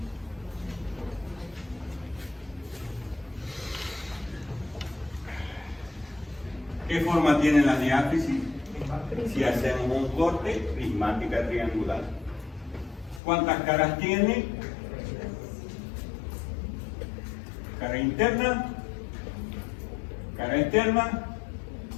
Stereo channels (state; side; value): drops out; right; at 13.2 s